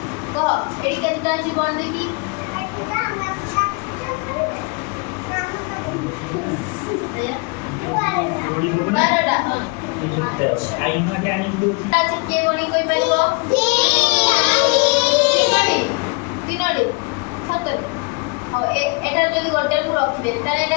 কহ এডি কেতটা আছে কোন দেখি बारह आईना के आनी दो आज के गणी कोई पाइबो तीनोडी सतरे और एटा जदी गोटे को रखि दे ताले एटा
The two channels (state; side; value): quieter; right; 30.9 dB